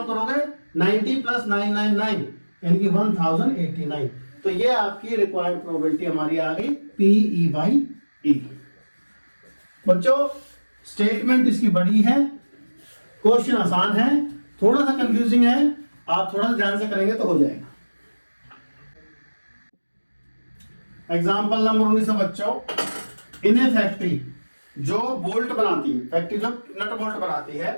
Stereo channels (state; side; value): inverted; both; correlation -1.00